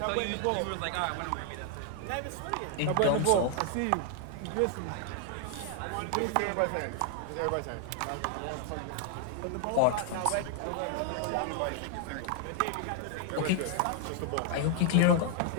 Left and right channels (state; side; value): different; both; correlation 0.00